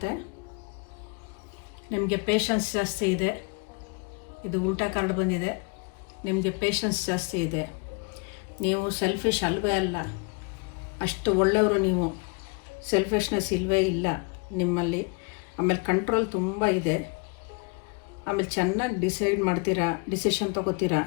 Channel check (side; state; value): right; quieter; 32.7 dB